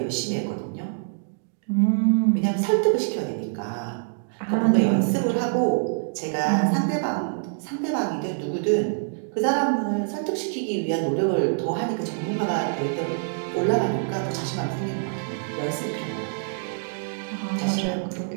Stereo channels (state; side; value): silent; left; digital silence